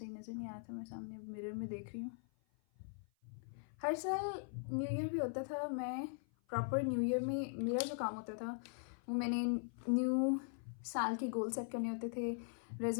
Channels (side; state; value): right; silent; 50 dB below the other